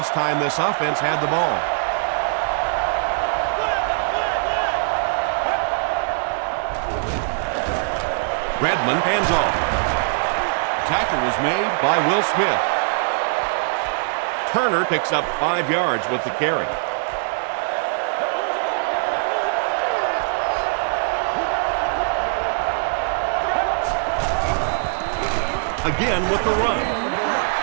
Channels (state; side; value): silent; left; digital silence